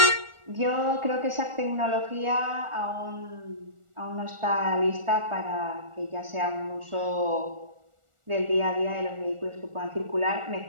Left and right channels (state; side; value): late; left; 1.4 ms